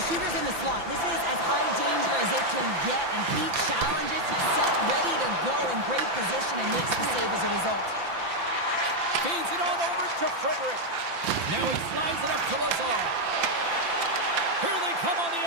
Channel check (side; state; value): left; late; 5.9 ms